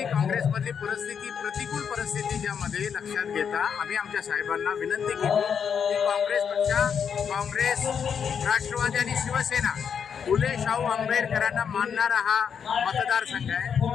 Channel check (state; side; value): quieter; right; 7.2 dB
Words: काँग्रेसमधली परिस्थिती प्रतिकूल परिस्थिती ज्यामध्ये लक्षात घेता आम्ही आमच्या साहेबांना विनंती केली की काँग्रेस राष्ट्रवादी आणि शिवसेना फुले शाहू आंबेडकरांना मानणारा हा मतदारसंघ